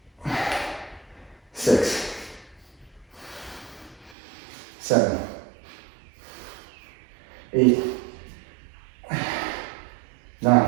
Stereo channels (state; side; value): drops out; left; at 4.2 s